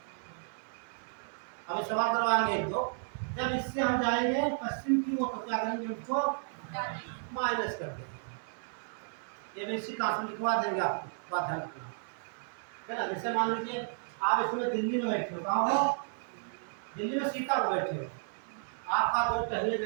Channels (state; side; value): silent; left; 56 dB below the other